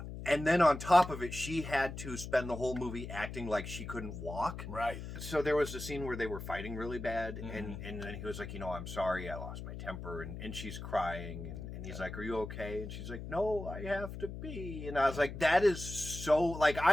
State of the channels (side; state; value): left; noise; hum, 8 dB below the sound